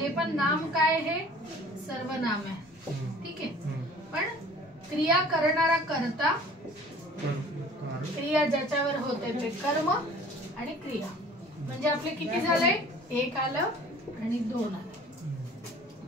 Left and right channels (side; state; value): both; normal; correlation 0.48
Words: पण नाम काय, हे सर्वनाम आहे, ठीक आहे. पण क्रिया करणारा कर्ता, क्रिया ज्याच्यावर होते ते कर्म आणि क्रिया. म्हणजे आपले किती झाले, एक आलं आणि दोन आलं,